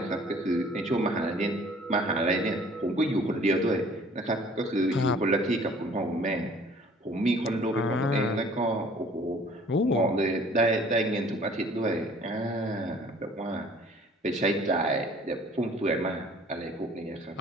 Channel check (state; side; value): normal; both; correlation 0.53